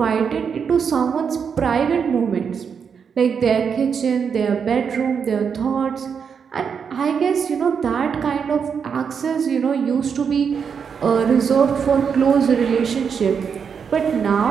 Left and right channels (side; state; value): left; quieter; 6.6 dB